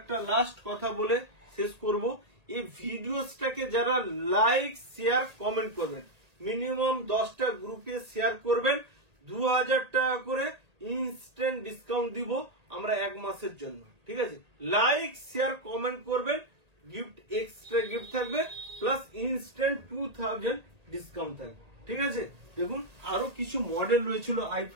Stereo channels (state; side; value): late; left; 1.8 ms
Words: লাস্ট কথা বলে শেষ করব, এই ভিডিওসটাকে যারা লাইক শেয়ার কমেন্ট করবেন, মিনিমাম 10টা গ্রুপে শেয়ার করবেন, 2,000 টাকা করে ইনস্ট্যান্ট ডিসকাউন্ট দিব আমরা 1 মাসের জন্য, ঠিক আছে? লাইক শেয়ার কমেন্ট করবেন, গিফট এক্সট্রা গিফট থাকবে, প্লাস ইনস্ট্যান্ট 2,000 ডিসকাউন্ট থাকবে, ঠিক আছে? দেখুন আরো কিছু মডেল রয়েছিল i5